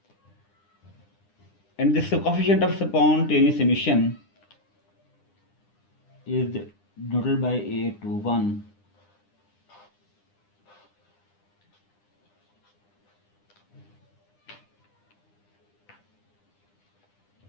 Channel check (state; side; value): late; right; 9.9 ms